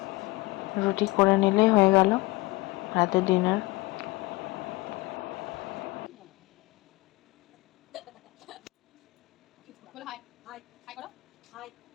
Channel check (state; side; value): quieter; right; 21.4 dB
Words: রুটি করে নিলেই হয়ে গেল রাতের ডিনার।